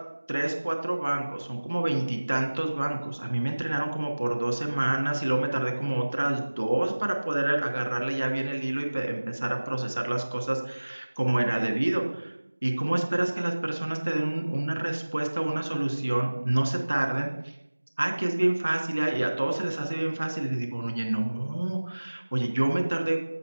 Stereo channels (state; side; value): inverted; both; correlation -1.00